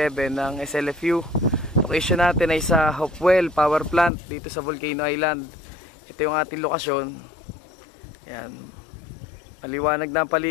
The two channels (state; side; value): drops out; right; at 4.1 s